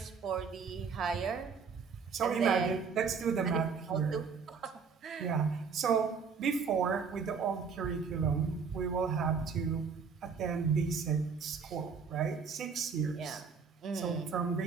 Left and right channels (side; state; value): left; quieter; 5.7 dB